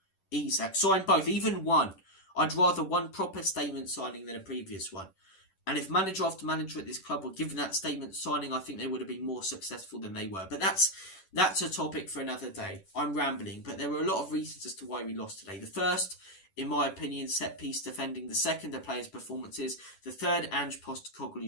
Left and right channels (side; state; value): right; late; 11 ms